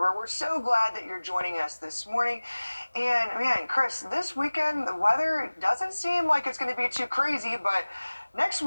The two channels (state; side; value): inverted; both; correlation -1.00